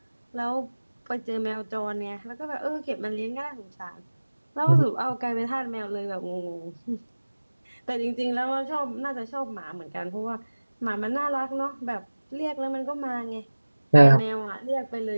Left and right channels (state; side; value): inverted; both; correlation -1.00